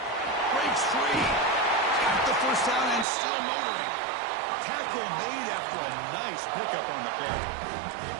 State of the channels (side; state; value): left; drops out; at 3.1 s